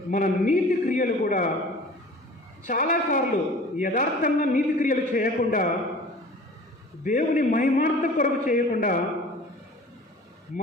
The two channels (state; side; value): normal; both; correlation 0.44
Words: మన నీతి క్రియలు కూడా చాలాసార్లు యథార్థంగా నీతి క్రియలు చేయకుండా దేవుని మహిమార్థం కొరకు చేయకుండా